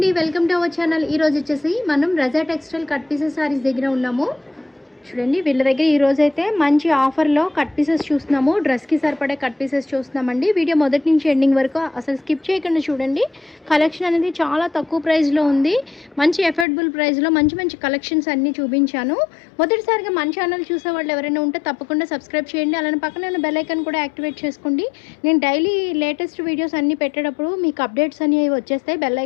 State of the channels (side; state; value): right; drops out; at 16.7 s